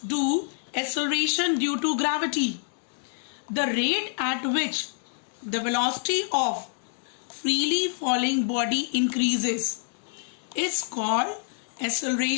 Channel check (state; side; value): silent; right; 60 dB below the other